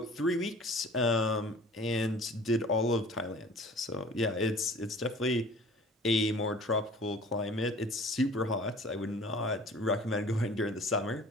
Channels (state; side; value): normal; both; correlation 0.46